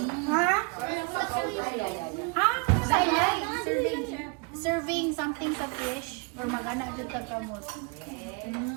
Ha? Ha? Serving something sa fish or magana dito kamot.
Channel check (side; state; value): left; quieter; 31.9 dB